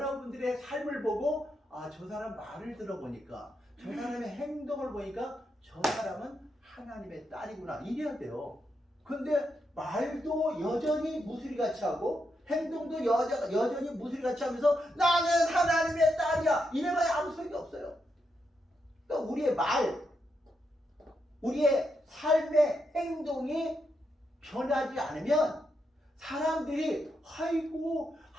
삶을 보고 저 사람 말을 들어보니까 저 사람의 행동을 보니까 저 사람은 하나님의 딸이구나 이래야 돼요. 근데 말도 여전히 무수리같이 하고 행동도 여전히 무수리같이 하면서 나는 하나님의 딸이야 이래봐야 아무 소용이 없어요. 그러니까 우리의 말, 우리의 삶의 행동이 변하지 않으면 사람들이 아이고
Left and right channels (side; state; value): both; normal; correlation 0.83